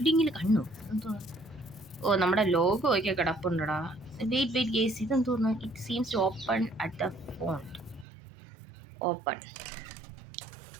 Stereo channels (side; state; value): left; drops out; at 8.1 s